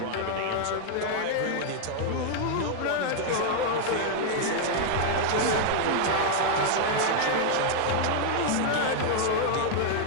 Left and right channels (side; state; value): both; different; correlation 0.00